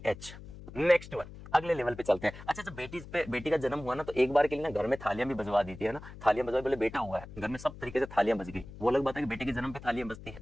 नेक्स्ट वन, अगले लेवल पे चलते हैं। अच्छा जब बेटी का जन्म हुआ ना तो एक बार के लिए ना घर में थालियां भी बजवा दी थी, है ना, थालियां बजवा, बोले बेटा हुआ है, घर में सब तरीके से थालियां बज गई। वो अलग बात है कि बेटे के जन्म पे थालियां बजती है,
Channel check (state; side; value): noise; left; hum, 15 dB below the sound